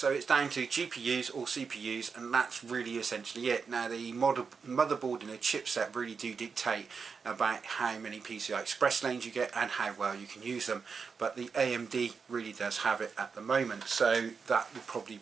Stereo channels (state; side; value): quieter; left; 5.5 dB